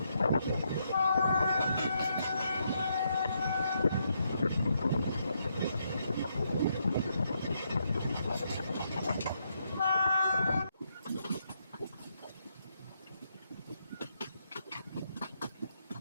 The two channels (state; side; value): inverted; both; correlation -0.78